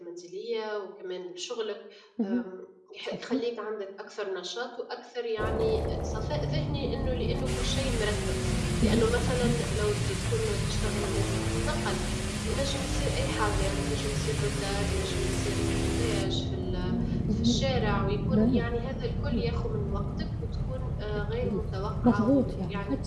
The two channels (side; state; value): both; identical; correlation 1.00